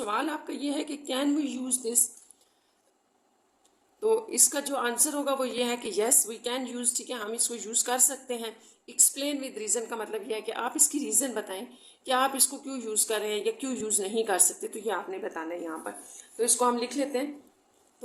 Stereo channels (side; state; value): both; identical; correlation 1.00